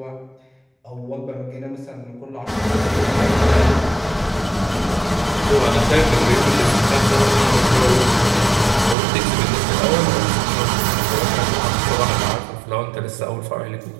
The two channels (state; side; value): drops out; left; at 9.0 s